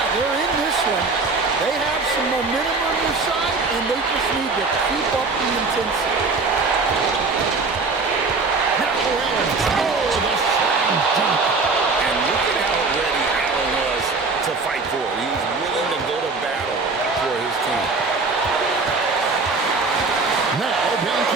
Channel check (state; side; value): quieter; left; 4.0 dB